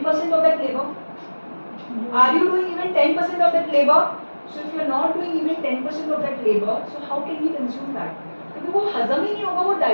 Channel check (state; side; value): inverted; both; correlation -1.00